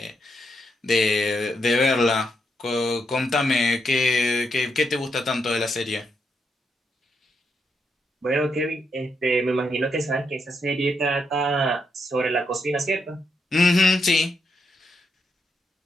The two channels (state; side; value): normal; both; correlation 0.80